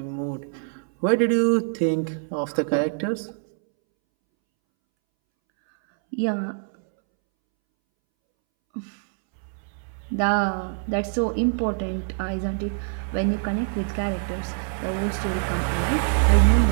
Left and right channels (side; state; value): left; silent; 62 dB below the other